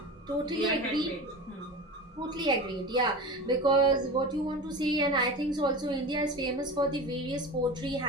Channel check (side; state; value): both; normal; correlation 0.30